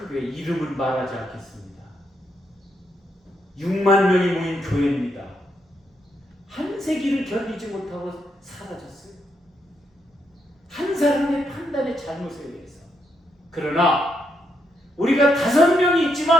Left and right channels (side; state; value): both; normal; correlation 0.79